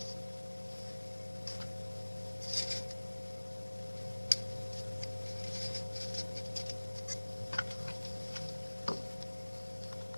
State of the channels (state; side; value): inverted; both; correlation -1.00